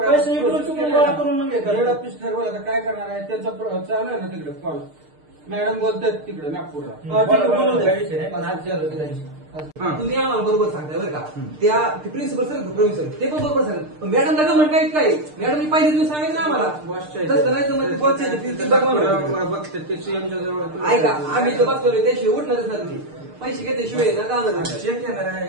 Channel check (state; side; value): late; left; 6.6 ms